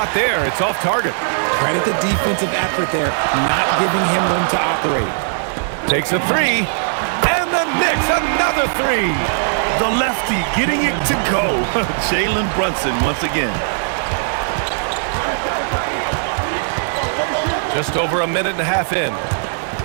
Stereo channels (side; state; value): left; silent; 67 dB below the other